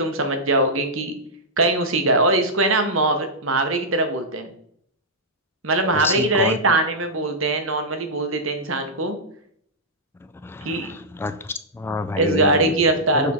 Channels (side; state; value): both; normal; correlation -0.10